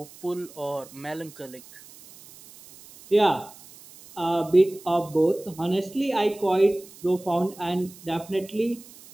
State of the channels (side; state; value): right; noise; hiss, 21 dB below the sound